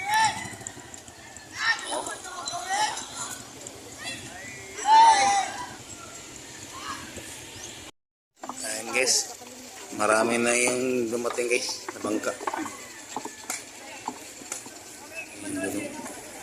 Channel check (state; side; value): identical; both; correlation 1.00